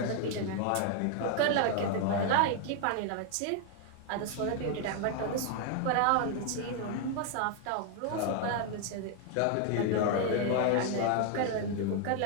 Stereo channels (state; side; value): different; both; correlation 0.00